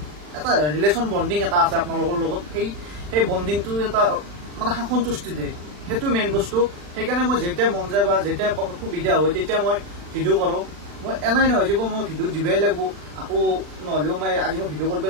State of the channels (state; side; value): late; left; 40 ms